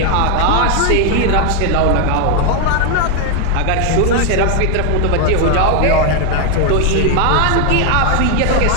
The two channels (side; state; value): both; different; correlation 0.00